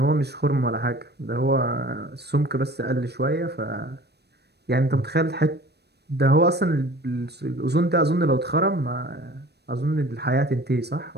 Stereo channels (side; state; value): left; late; 0.48 ms